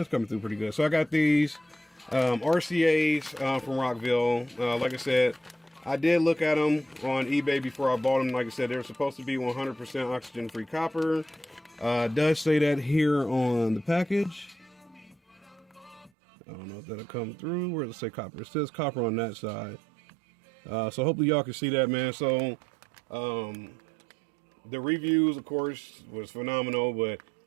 coming through pretty good. So I got these RCAs from Rockville. Like I said, I did look at them on eBay before I bought them. Like I said, they're supposed to be 100% oxygen-free copper. It does say that here on the package. I don't know if that'll come through. Where does it say copper? It says copper on that side. So hopefully y'all can see that, man. So the reviews, of course, was phenomenal, but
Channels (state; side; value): drops out; left; at 16.1 s